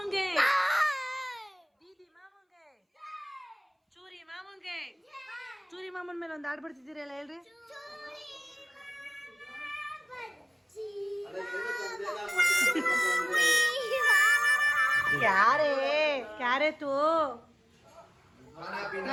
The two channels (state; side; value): identical; both; correlation 1.00